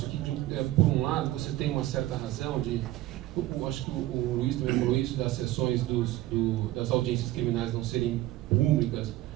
que por um lado você tem uma certa razão acho que o Luiz também falou isso, das sessões das audiências criminais não serem públicas,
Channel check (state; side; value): quieter; left; 15.9 dB